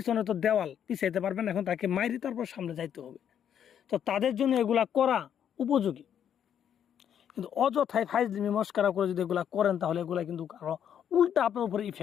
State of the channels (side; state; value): right; quieter; 9.1 dB